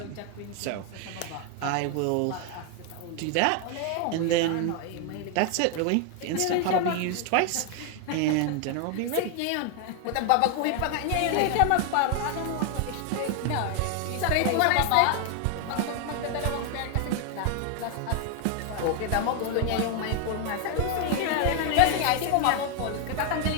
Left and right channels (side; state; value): both; different; correlation 0.00